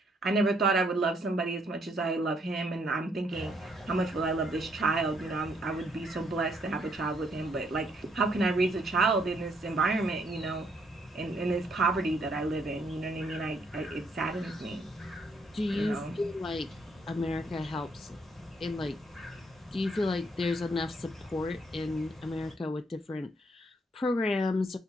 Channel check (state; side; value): normal; both; correlation 0.70